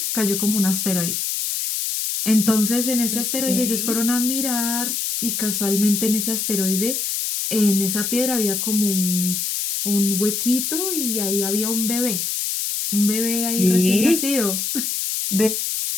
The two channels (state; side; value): noise; left; hiss, 1 dB below the sound